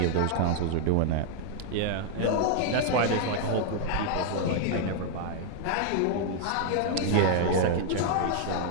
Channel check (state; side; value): different; both; correlation 0.00